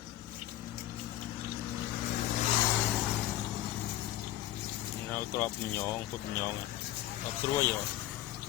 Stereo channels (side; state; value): right; quieter; 14.4 dB